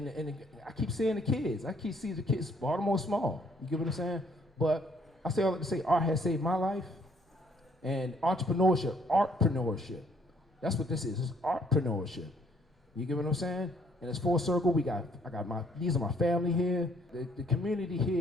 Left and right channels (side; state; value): both; normal; correlation 0.65